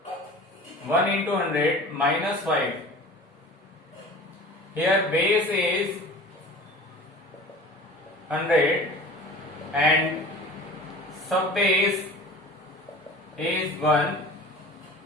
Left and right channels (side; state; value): both; normal; correlation 0.39